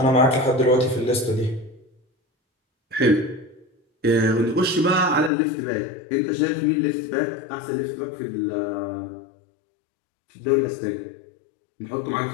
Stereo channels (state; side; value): drops out; right; at 5.3 s